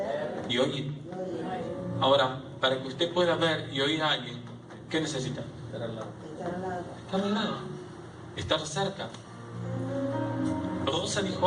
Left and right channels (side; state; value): both; identical; correlation 1.00